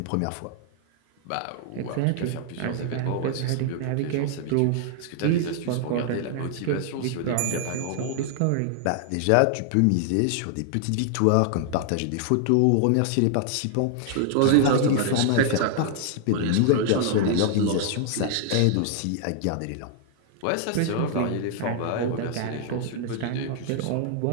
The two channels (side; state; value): both; different; correlation 0.00